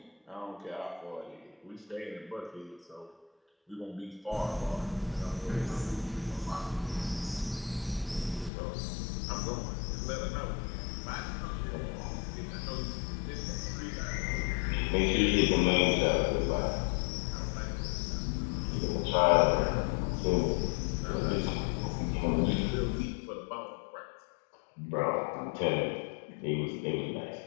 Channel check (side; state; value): right; drops out; at 8.5 s